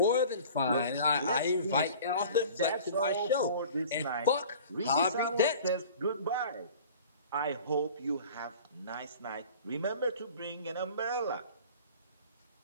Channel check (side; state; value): both; inverted; correlation -0.44